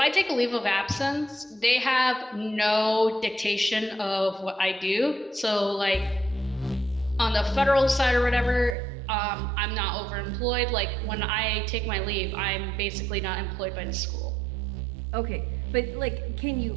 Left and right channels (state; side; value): drops out; left; at 8.8 s